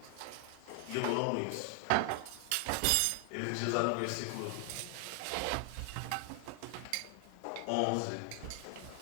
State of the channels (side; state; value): both; different; correlation 0.00